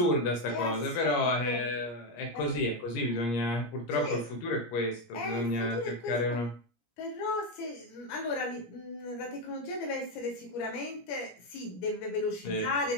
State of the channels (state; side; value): late; right; 17 ms